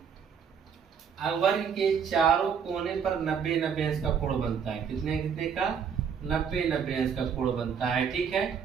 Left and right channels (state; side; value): quieter; left; 7.0 dB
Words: वर्ग के चारों कोने पर 90-90 अंश का कोण बनता है। कितने कितने का? 90-90 अंश का कोण बनता है, ठीक